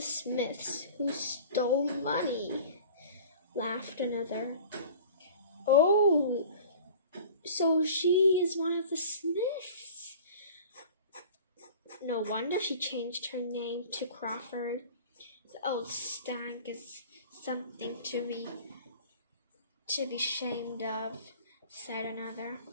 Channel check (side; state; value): both; inverted; correlation -0.42